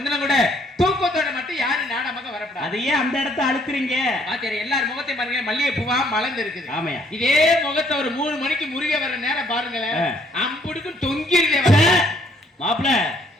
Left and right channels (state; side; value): normal; both; correlation 0.65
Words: கூட தூக்கத்தோட மட்டும் யாரும் நாடமாக வரப்படாது. அதையே அந்த இடத்த அழுக்குறீங்க. பாத்தியாரு எல்லார் முகத்தையும் பாருங்க, மல்லிகை பூவா மலர்ந்து இருக்குது. ஆமையா. இதே முகத்தை ஒரு 3 மணிக்கு முருக வர நேரம் பாருங்களேன், அம்புடுக்கும் தொங்கிருதே. மாப்பிள